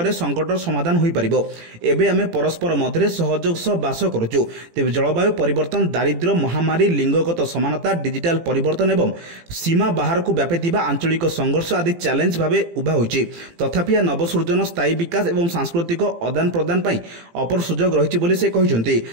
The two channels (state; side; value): late; left; 18 ms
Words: संकटर समाधान हो पार। एबे आमे परस्पर मध्य सहयोग सह बास करुचु। तेज जलवायु परिवर्तन, दारिद्र्य, महामारी, लिंगगत समानता, डिजिटाल परिवर्तन एवं सीमा बाहर को व्यापीथिबा आंचलिक संघर्ष आदि चैलेंज भाव उभा होइछि। तथापि नवसृजन, स्थायी विकास एवं सांस्कृतिक आदान प्रदान पर अपर सुजोग रही बोली से कहते।